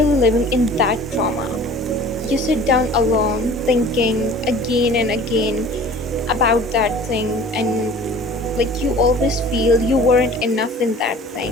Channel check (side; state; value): both; normal; correlation 0.45